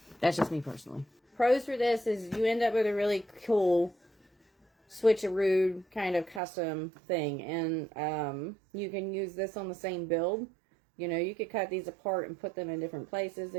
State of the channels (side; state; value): left; drops out; at 6.4 s